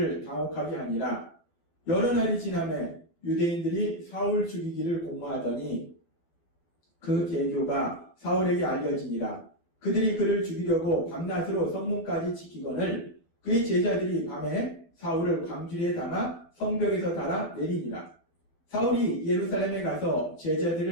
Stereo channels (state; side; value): late; right; 12 ms